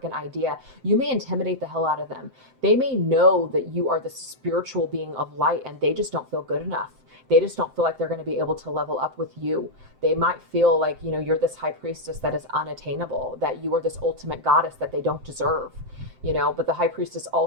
idea. You may intimidate the hell out of them. They may know that you are the spiritual being of light and they just don't feel good enough. They just don't feel like they're going to be able to level up with you. They might feel like, you're this high priestess that is unattainable, that you are this ultimate goddess that they don't deserve, but the High Priestess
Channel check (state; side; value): late; left; 7.7 ms